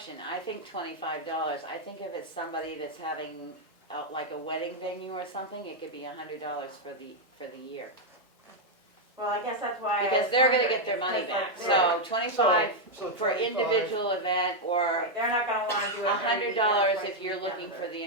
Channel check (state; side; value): normal; both; correlation 0.00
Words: I think $25. I think if it's somebody that's having like a wedding venue or something, it could be $100 for the year. Well, I guess that's why I Because was they're gonna wondering, get their it's money 'cause, back. like, So 25 So for 25 individual event, or right, they're not gonna wanna do it every $100 weekend, if twice you're a weekend, looking or for the